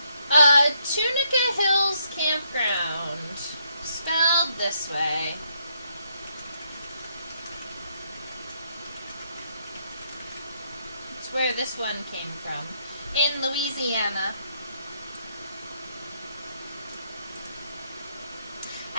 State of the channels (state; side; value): inverted; both; correlation -0.74